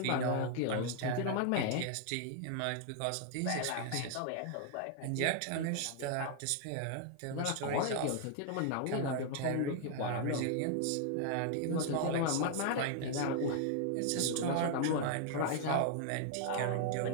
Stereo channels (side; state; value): both; different; correlation 0.00